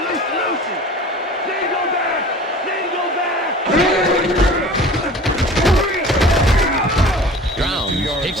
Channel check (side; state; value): both; normal; correlation 0.42